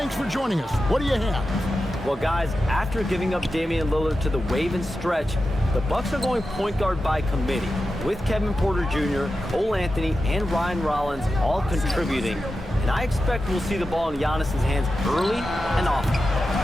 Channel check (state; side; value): normal; both; correlation 0.91